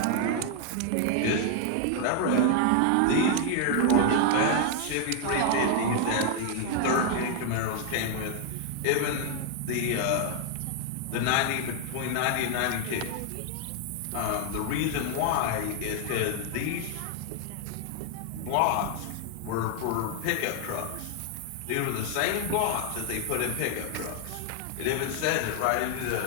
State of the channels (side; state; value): both; different; correlation 0.00